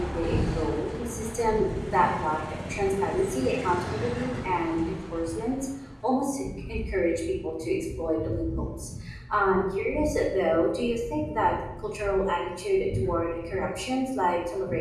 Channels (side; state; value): both; identical; correlation 1.00